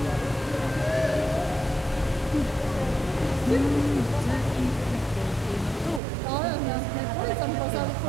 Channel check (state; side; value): drops out; left; at 6.0 s